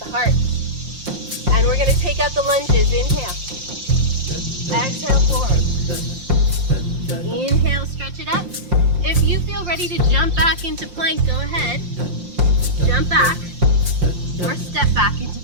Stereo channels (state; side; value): late; left; 5.7 ms